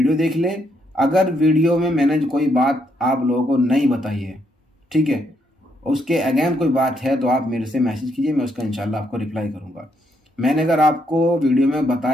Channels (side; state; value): both; normal; correlation 0.75